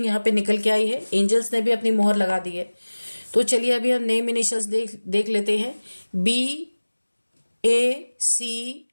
यहाँ पे निकल के आई है। एंजल्स ने भी अपनी मोहर लगा दी है। तो चलिए अभी हम नेम इनिशियल्स देख लेते हैं। BACTLPRHG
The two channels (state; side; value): inverted; both; correlation -1.00